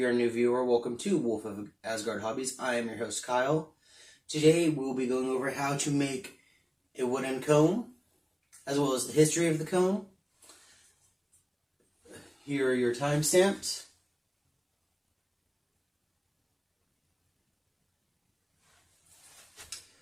a new viewer, welcome to Wolf of Asgard Hobbies. I am your host, Kyle. Today, we will be going over how to make a wooden comb, as well as the history of the comb. Here are your timestamps.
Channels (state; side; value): identical; both; correlation 1.00